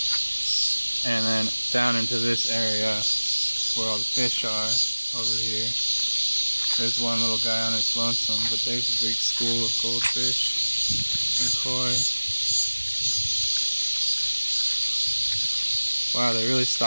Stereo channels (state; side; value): inverted; both; correlation -1.00